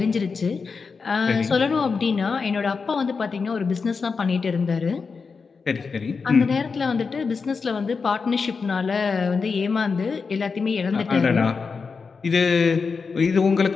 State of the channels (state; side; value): quieter; right; 5.0 dB